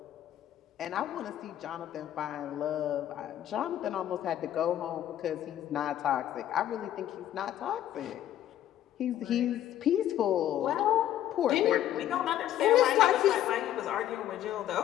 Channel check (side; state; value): right; quieter; 11.9 dB